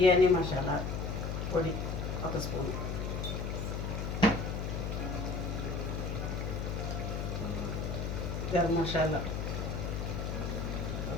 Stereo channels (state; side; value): noise; left; hum, 2 dB below the sound